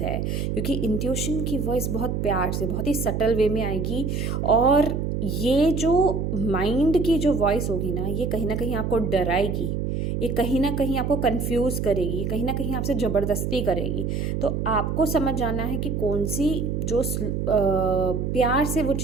है, क्योंकि इंट्यूशन की वॉइस बहुत प्यार से, बहुत ही सटल वे में आएगी। और ये जो माइंड की जो वॉइस होगी ना, ये कहीं ना कहीं आपको डराएगी, ये कहीं ना कहीं आपको कंफ्यूज करेगी, कहीं ना कहीं आपसे ज़बरदस्ती करेगी। तो आपको समझ जाना है कि कौन सी जो प्यार से वो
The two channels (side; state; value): right; noise; hum, 1 dB below the sound